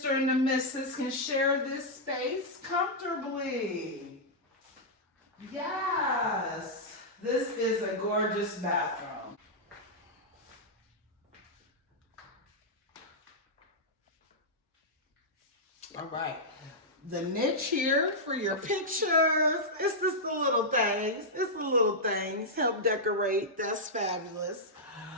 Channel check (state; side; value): normal; both; correlation -0.08